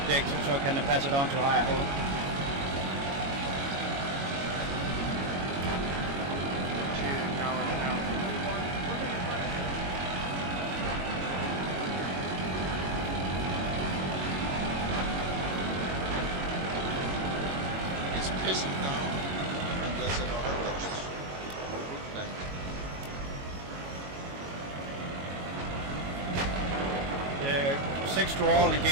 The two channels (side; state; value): left; late; 22 ms